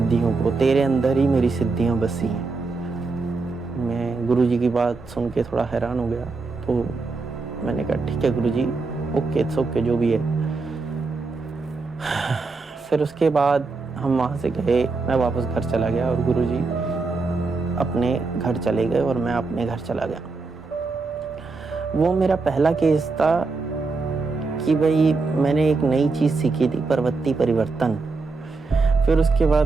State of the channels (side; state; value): left; quieter; 3.9 dB